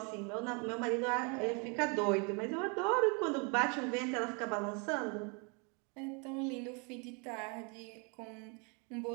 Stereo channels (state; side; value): quieter; left; 34.2 dB